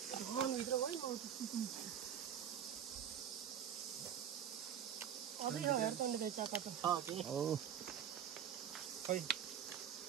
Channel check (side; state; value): left; quieter; 9.1 dB